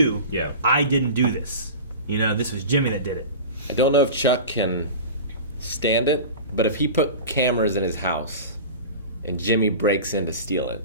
Yeah. I didn't do this. You know, this was Jimmy that did it. I don't know if Chuck can stand it, but if he put cameras in his house and Jimmy breaks in to steal it.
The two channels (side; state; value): both; inverted; correlation -0.33